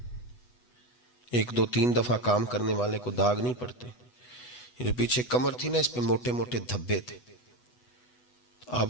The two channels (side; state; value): right; late; 8.1 ms